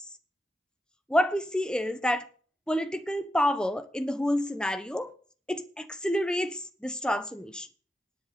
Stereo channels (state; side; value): normal; both; correlation 0.88